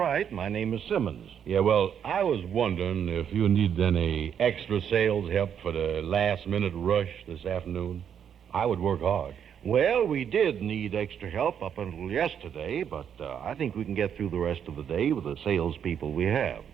My name is Simmons. Yeah, well, I was wondering if you need any extra sales help for the last-minute rush this afternoon. I would work hard. Well, we did need extra help up until yesterday, but I think we can get through the rest of the day with the salespeople we have.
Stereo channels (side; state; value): left; quieter; 8.4 dB